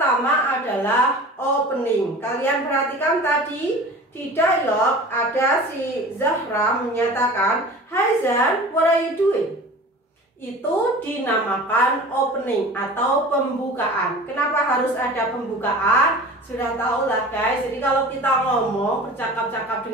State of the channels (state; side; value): normal; both; correlation 0.39